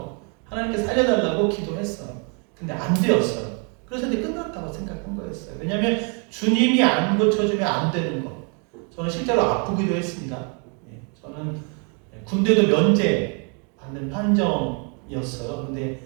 하나님께 살려달라고 기도했어요. 근데 안 되었어요. 그래서 이제 끝났다고 생각한 거였어요. 왜냐하면 주님이 안 고쳐주면 안 되는 것. 저는 실제로 아프기도 했습니다. 저는 군대도 면제 받는 판정이었어요.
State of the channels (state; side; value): quieter; left; 37.5 dB